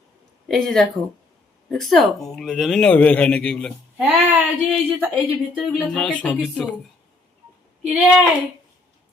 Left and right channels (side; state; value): right; quieter; 3.0 dB